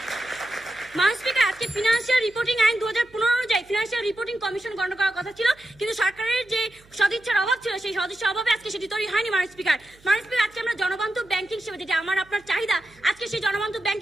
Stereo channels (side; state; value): right; noise; hum, 28 dB below the sound